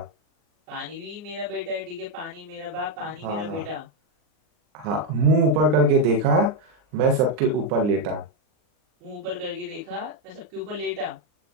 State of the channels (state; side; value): late; left; 39 ms